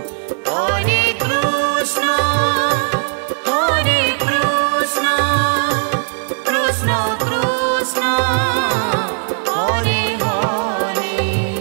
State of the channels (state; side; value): silent; left; digital silence